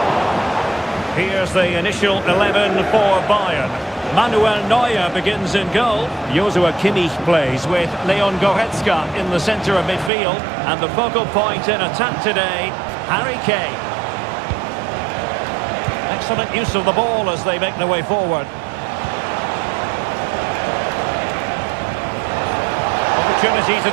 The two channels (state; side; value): drops out; left; at 10.1 s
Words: Here's the initial 11 for Bayern. Manuel Neuer begins in goal. Joshua Kimmich plays with Leon Goretzka in the centre of midfield. And the focal point in attack today, Harry Kane. Excellent use of the ball as they make their way forward. Opportunity to